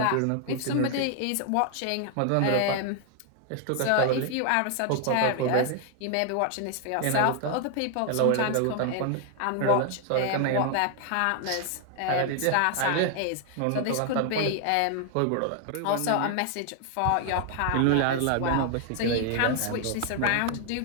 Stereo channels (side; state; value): both; different; correlation 0.00